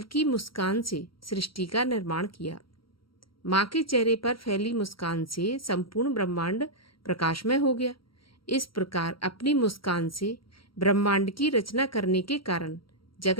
मुस्कान से सृष्टि का निर्माण किया। माँ के चेहरे पर फैली मुस्कान से संपूर्ण ब्रह्मांड प्रकाशमय हो गया। इस प्रकार अपनी मुस्कान से ब्रह्मांड की रचना करने के कारण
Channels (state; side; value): late; right; 0.74 ms